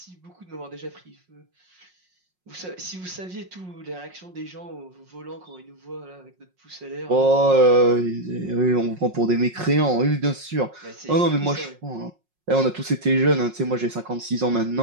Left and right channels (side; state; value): left; late; 5.5 ms